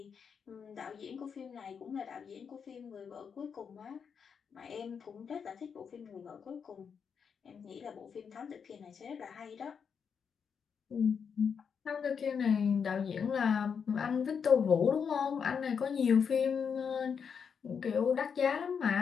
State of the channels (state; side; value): quieter; right; 6.6 dB